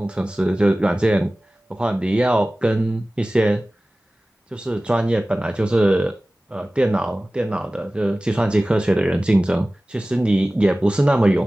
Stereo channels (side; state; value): both; normal; correlation 0.97